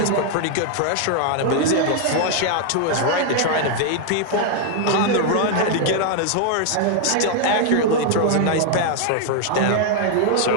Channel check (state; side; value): different; both; correlation 0.00